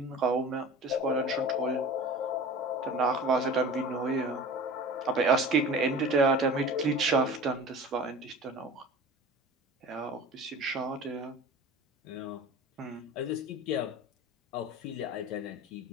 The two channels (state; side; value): normal; both; correlation 0.38